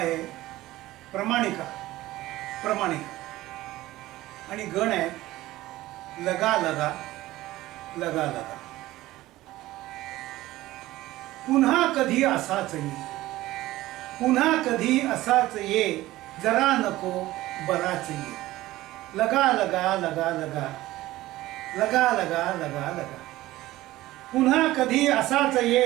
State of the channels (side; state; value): left; quieter; 16.8 dB